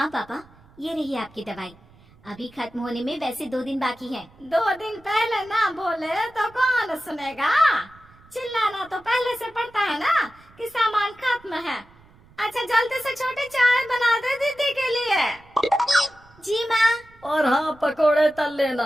पापा, ये रही आपकी दवाई। अभी खत्म होने में वैसे 2 दिन बाकी है। 2 दिन पहले ना बोले तो कौन सुनेगा? चिल्लाना तो पहले से पड़ता है ना कि सामान खत्म है। अच्छा जल्दी से छोटी चाय बना दे दीदी के लिए। जी माँ। और हाँ, पकोड़े तल लेना,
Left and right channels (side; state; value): right; noise; rumble, 27 dB below the sound